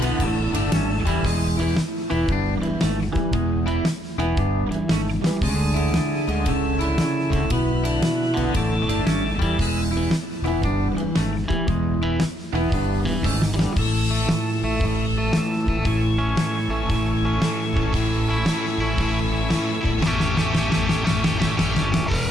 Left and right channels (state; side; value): normal; both; correlation 0.78